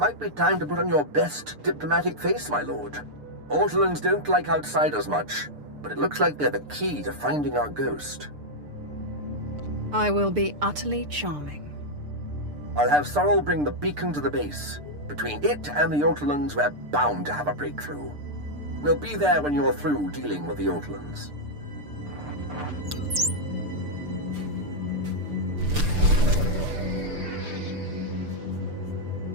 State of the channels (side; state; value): left; late; 6.7 ms